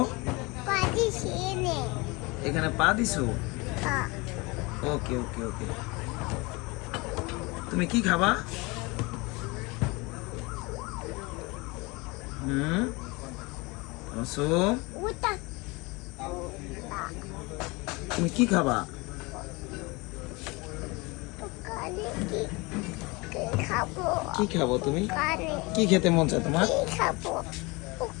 এখানে পা দিছো? ওকে ওকে ওকে। তুমি কি খাবা? তাবাসসুম, তুমি কি খাবা? কি খাবো তুমি? কি খেতে মন চায় তোমার?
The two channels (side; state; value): right; quieter; 25.5 dB